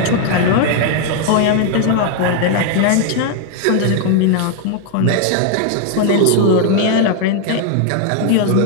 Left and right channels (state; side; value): different; both; correlation 0.00